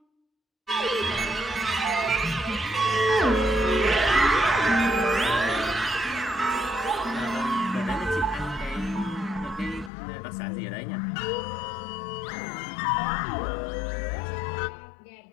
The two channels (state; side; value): drops out; right; at 9.9 s